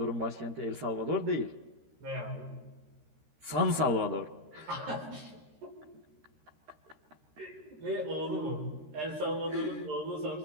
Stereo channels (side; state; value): left; late; 13 ms